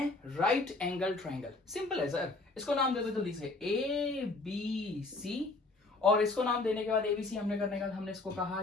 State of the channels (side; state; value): right; quieter; 3.3 dB